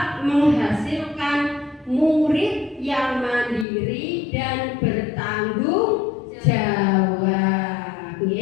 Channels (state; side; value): drops out; right; at 3.7 s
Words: menghasilkan murid yang mandiri dan bertanggung jawab.